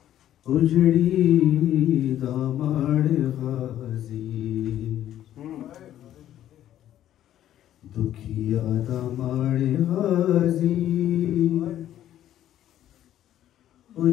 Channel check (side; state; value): right; quieter; 11.9 dB